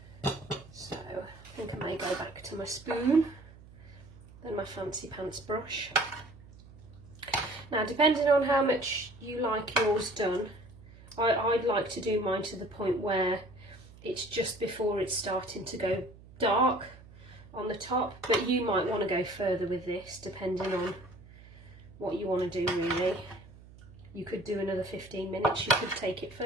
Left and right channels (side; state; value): right; noise; hum, 20 dB below the sound